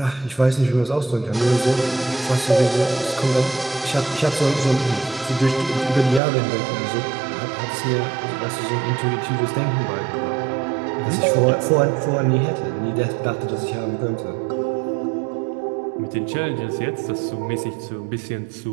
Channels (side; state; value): left; drops out; at 6.2 s